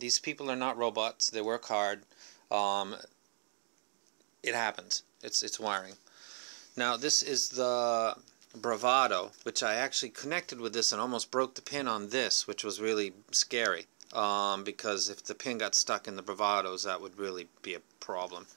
people are not robots. They work hard. It happens. It's wiring. Now this is the Bravado, which I actually connected with this and almost broke the pin on this, which was really scary. Because if the pin got stuck in the Bravados, that would really be a problem.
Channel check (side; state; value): left; silent; digital silence